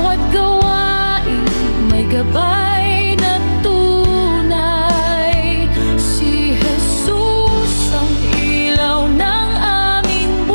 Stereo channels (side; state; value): both; inverted; correlation -1.00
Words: gawain may gabay na tunay, si Jesus ang ilaw ng aming